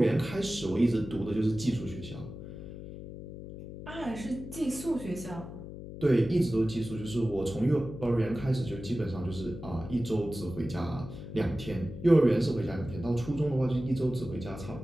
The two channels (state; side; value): noise; left; hum, 11 dB below the sound